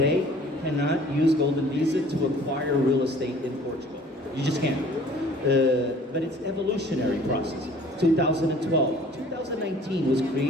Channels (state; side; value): normal; both; correlation 0.52